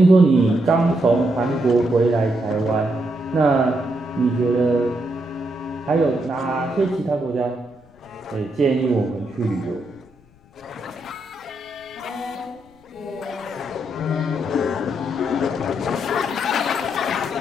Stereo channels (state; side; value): noise; left; rumble, 29 dB below the sound